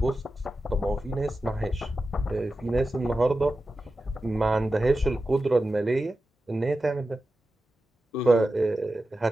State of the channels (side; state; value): both; normal; correlation 0.92